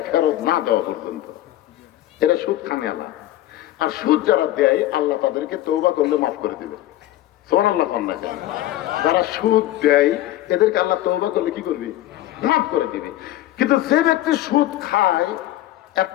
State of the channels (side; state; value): right; quieter; 14.5 dB